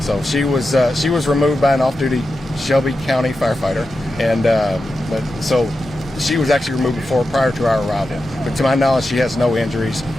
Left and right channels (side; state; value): both; normal; correlation 0.90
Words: So she was removed by an off-duty Shelby County firefighter, and so she was actually removed prior to our arrival. But to my knowledge, she has no injuries,